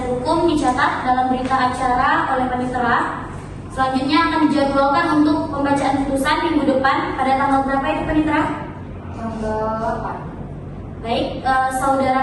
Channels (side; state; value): both; identical; correlation 1.00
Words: hukum dicatat dalam berita acara oleh panitera. Selanjutnya akan dijadwalkan untuk pembacaan putusan minggu depan pada tanggal berapa itu panitera? Tanggal 8. Baik,